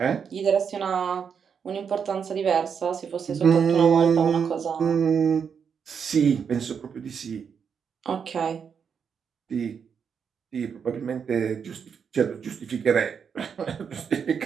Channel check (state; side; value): quieter; left; 6.8 dB